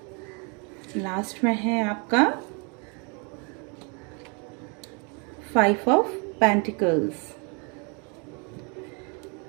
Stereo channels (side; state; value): left; quieter; 34.0 dB